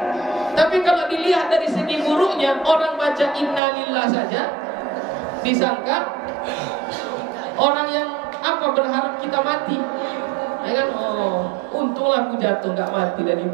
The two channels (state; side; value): drops out; left; at 3.6 s